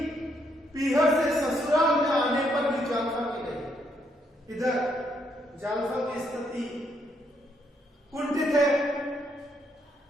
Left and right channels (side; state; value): both; normal; correlation 0.74